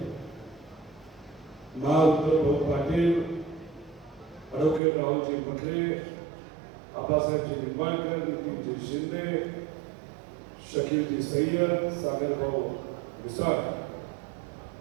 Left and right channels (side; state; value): left; drops out; at 4.8 s